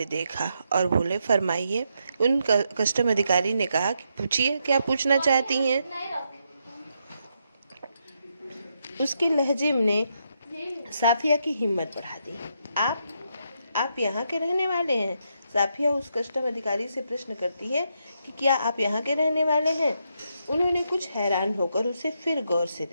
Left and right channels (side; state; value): both; inverted; correlation -0.80